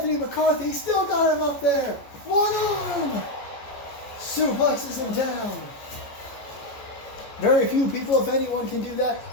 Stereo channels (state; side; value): late; right; 14 ms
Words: McCarthy? Still got him up there. One arm. Suplexes him down. Very few people, if anyone, can do that.